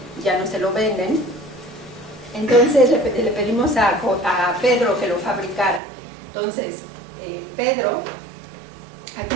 ya no se lo venden. Entonces le pedimos a Pedro que lo fabricara. Entonces, Pedro, aquí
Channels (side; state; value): left; drops out; at 5.8 s